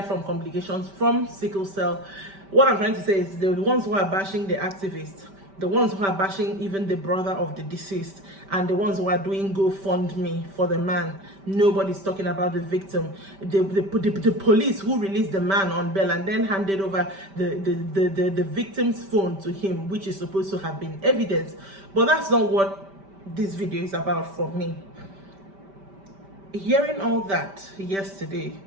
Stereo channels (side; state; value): left; late; 5.1 ms